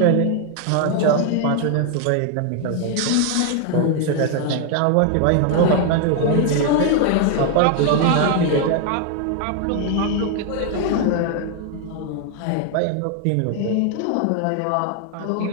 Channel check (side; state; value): both; different; correlation 0.00